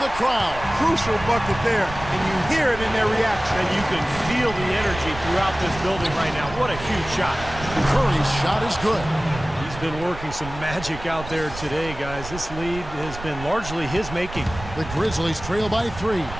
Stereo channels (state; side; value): noise; right; rumble, 12 dB below the sound